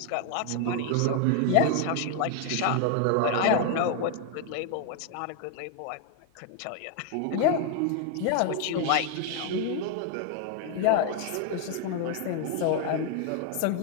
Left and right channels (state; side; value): different; both; correlation 0.00